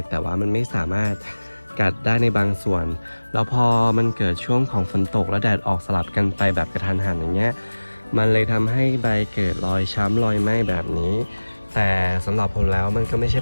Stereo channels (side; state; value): both; inverted; correlation -1.00